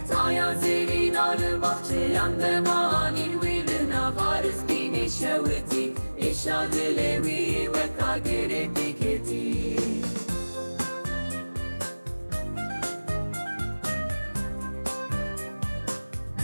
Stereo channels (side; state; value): both; inverted; correlation -1.00